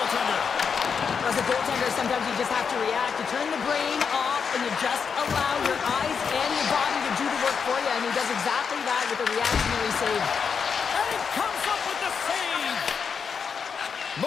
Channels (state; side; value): quieter; right; 6.3 dB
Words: As a goaltender, sometimes you just have to react. You turn the brain off and you just allow your eyes and your body to do the work for you. And he does exactly that with a reactionary save. And he comes up with the save.